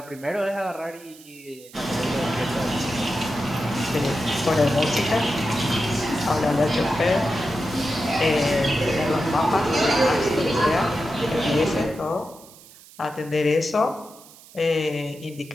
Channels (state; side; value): noise; right; hiss, 22 dB below the sound